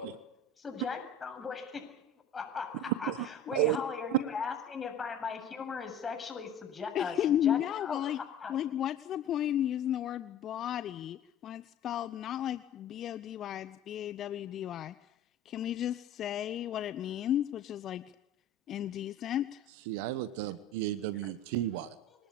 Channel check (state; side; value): quieter; right; 3.2 dB